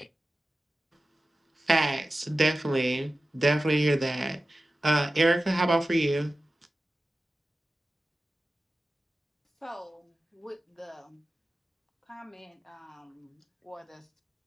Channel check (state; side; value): normal; both; correlation 0.94